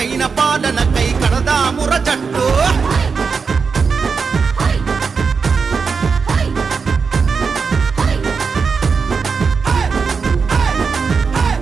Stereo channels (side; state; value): left; quieter; 5.3 dB